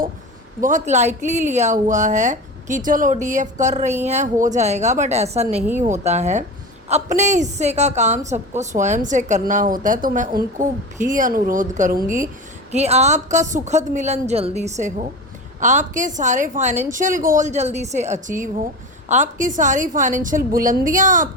बहुत लाइटली लिया हुआ है कि चलो डीएफ कर रही हैं हो जाएगा, बट ऐसा नहीं होता है। अपने हिस्से का काम सबको स्वयं से करना होता है। तो मैं उनको भी अनुरोध करूँगी कि आपका सुखद मिलन जल्दी से हो, आपके सारे फाइनेंशियल गोल जल्दी से अचीव हो, आपकी सारी फाइनेंशियल बुलंदियां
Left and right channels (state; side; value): normal; both; correlation 0.27